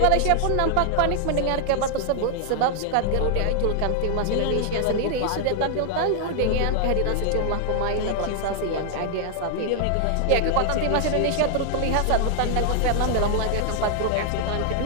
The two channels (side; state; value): both; different; correlation 0.00